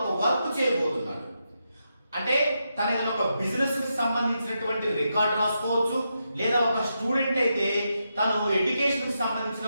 వర్క్ చేయబోతున్నాడు. అంటే తన ఏదైనా ఒక బిజినెస్ కి సంబంధించినటువంటి రికార్డు రాసుకోవచ్చు, లేదా ఒక స్టూడెంట్ అయితే తను ఎడ్యుకేషన్ కి సంబంధించిన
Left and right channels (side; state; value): both; inverted; correlation -0.85